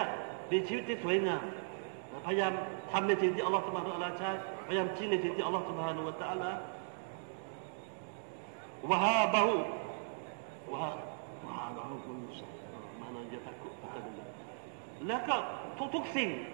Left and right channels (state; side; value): silent; left; digital silence